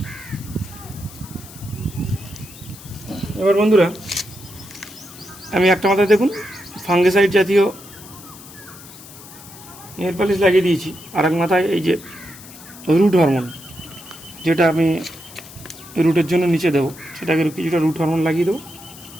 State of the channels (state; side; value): noise; left; hiss, 18 dB below the sound